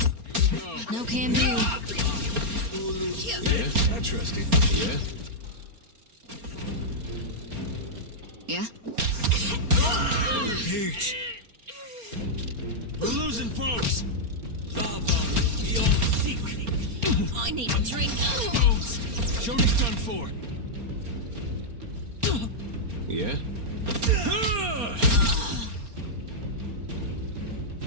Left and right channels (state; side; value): late; left; 4.3 ms